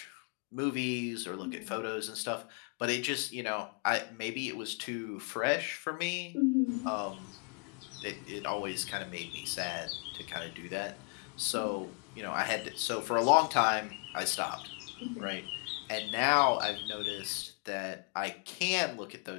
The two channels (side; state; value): right; quieter; 36.3 dB